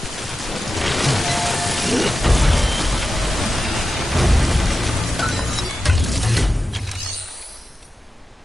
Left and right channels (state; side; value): normal; both; correlation 0.92